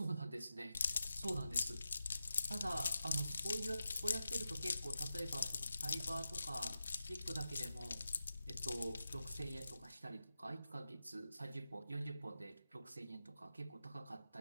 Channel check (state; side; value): inverted; both; correlation -0.91